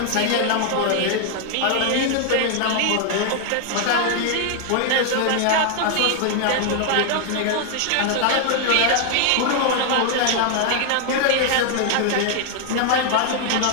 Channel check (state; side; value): different; both; correlation 0.00